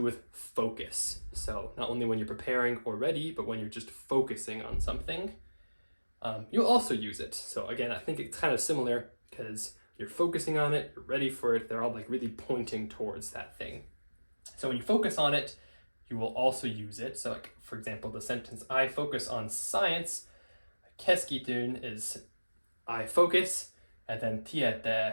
with focus. So not only when you're preparing or ready, but when you're just focusing on something, you'll also use it. So again, I think it's kind of similar because you're focusing on it, you're ready for it. They're all like really pointing towards that thing. So when you focus on it, you will also use it. So like, for example, the sentence, I focus on science, keskityn is I focus, and then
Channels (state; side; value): inverted; both; correlation -1.00